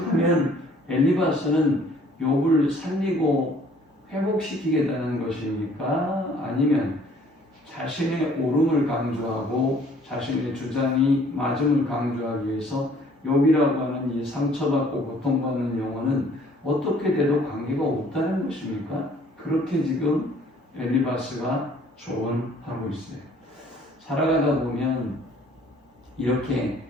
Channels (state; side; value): normal; both; correlation 0.58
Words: 엘리바스는 욥을 살리고 회복시키겠다는 것입니까? 아니면 자신의 옳음을 강조하고 자신의 주장이 맞음을 강조하기 위해서 욥이라고 하는 이 상처받고 고통받는 영혼은 어떻게 돼도 관계가 없다는 것입니까? 그렇게 지금 엘리바스가 조언하고 있어요. 살아가다 보면 이렇게